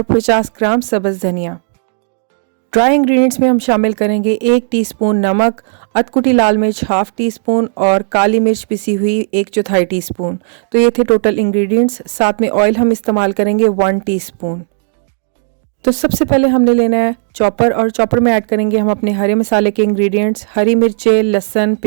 50 ग्राम सब्ज़ धनिया। ड्राई इंग्रेडिएंट्स में हम शामिल करेंगे 1 टीस्पून नमक, अधकुटी लाल मिर्च 1/2 टीस्पून और काली मिर्च पिसी हुई 1/4 टीस्पून। तो ये थे टोटल इंग्रेडिएंट्स। साथ में ऑयल हम इस्तेमाल करेंगे 1 टीस्पून। तो सबसे पहले हमने लेना है चॉपर, और चॉपर में ऐड करेंगे हम अपने हरे मसाले के इंग्रेडिएंट्स, हरी मिर्चें, लहसुन,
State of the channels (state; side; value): silent; left; 71 dB below the other